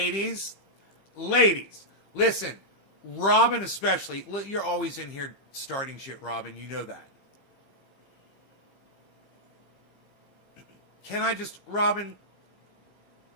listen, Robin especially, you're always in here starting shit, Robin, you know that. Robin,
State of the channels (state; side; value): late; right; 15 ms